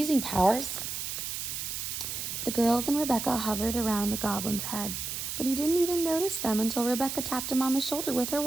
powers. The girls and Rebecca hovered around the goblin's head, but he didn't even notice them until Rebecca tapped him on the shoulder with her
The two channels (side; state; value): right; noise; hiss, 4 dB below the sound